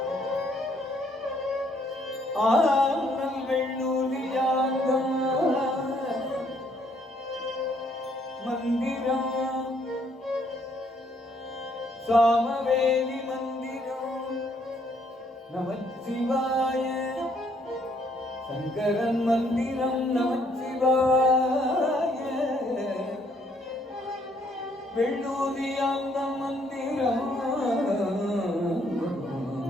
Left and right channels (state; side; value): normal; both; correlation 0.68